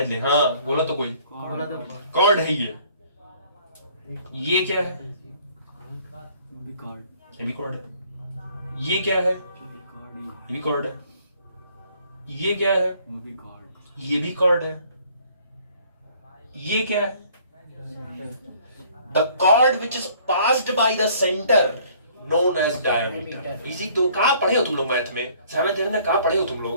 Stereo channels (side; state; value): both; inverted; correlation -0.58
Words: ले, हाँ बोला तो कोई, कॉर्ड है ये क्या है? ये भी कॉर्ड है। ये क्या है? ये भी कॉर्ड है। ये क्या है? ये भी कॉर्ड है। ये क्या है? The chord which is passed by the center known as diameter. इसी तो कहाँ पढ़े हो तुम लोग मैथ में? 7th में कहाँ पढ़े हो तुम